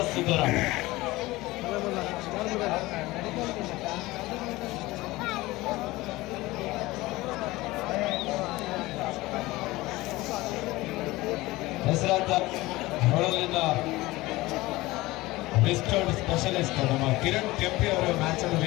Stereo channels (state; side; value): quieter; right; 19.6 dB